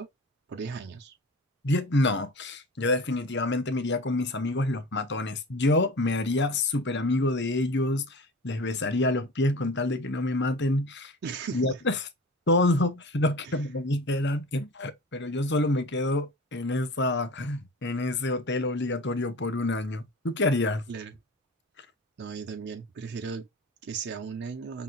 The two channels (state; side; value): normal; both; correlation 0.36